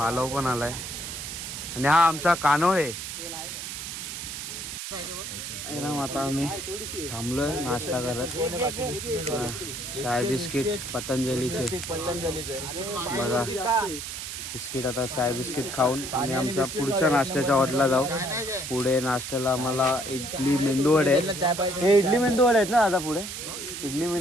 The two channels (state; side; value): noise; right; hiss, 7 dB below the sound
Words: पण आलाय. आणि हा आमचा कानो आहे. आता आम्ही थांबलोय नाश्ता करत. चाय बिस्किट पतंजलीचे बघा. बिस्किट आता चाय बिस्किट खाऊन आम्ही आमच्या पुढच्या नाश्त्याच्या हॉटेलला जाऊ. पुढे नाश्त्याला आम्हाला इडली मेंदू वडे आहेत. हे इडली मेंदू वडे आहेत ना आता पुढे इडली